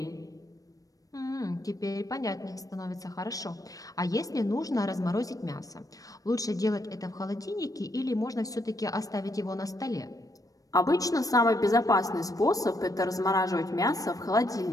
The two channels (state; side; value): late; right; 0.17 ms